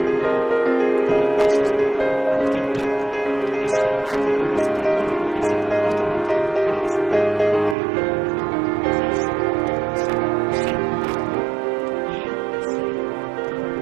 un espacio llamado Agustín Tosco. Ese barrio está libre de violencia porque justamente las mujeres y hombres que viven allí se autoorganizaron, hicieron un barrio y se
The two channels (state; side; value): drops out; left; at 7.8 s